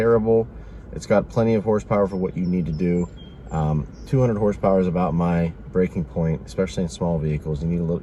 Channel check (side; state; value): both; identical; correlation 1.00